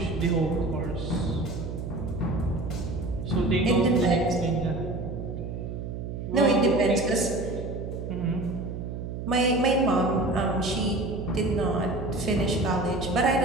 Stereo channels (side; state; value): right; noise; hum, 6 dB below the sound